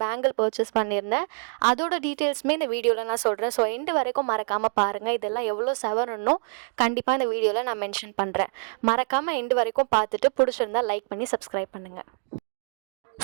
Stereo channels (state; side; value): silent; left; 61 dB below the other